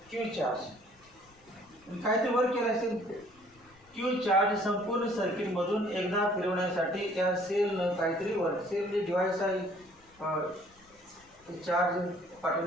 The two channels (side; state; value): left; noise; rumble, 30 dB below the sound